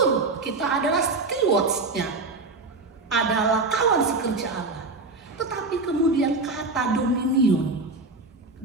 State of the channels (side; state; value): left; quieter; 3.6 dB